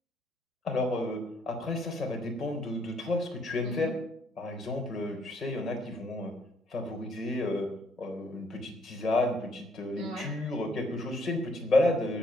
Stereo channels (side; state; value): both; normal; correlation 0.67